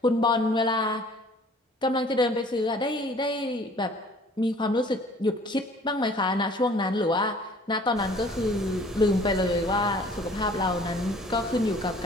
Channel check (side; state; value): both; normal; correlation 0.53